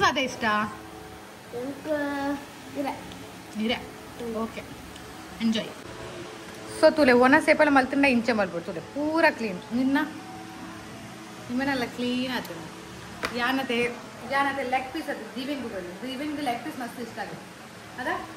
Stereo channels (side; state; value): both; identical; correlation 1.00